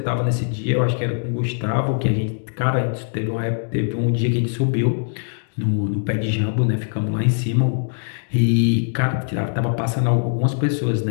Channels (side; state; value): right; silent; digital silence